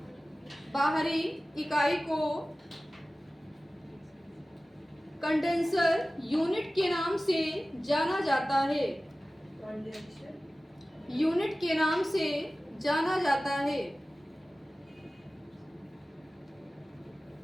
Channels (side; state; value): both; normal; correlation 0.96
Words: कंडेंसर यूनिट के नाम से जाना जाता है, यूनिट के नाम से जाना जाता है।